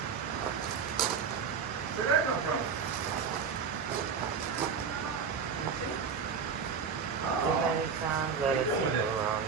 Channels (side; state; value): left; quieter; 6.2 dB